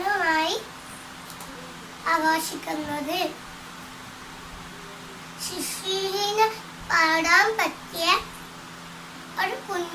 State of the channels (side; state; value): both; identical; correlation 1.00